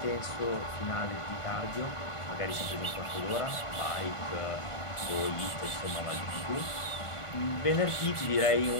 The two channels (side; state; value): right; late; 1.5 ms